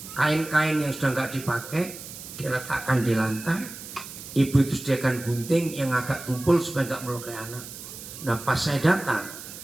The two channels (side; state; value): right; noise; hiss, 13 dB below the sound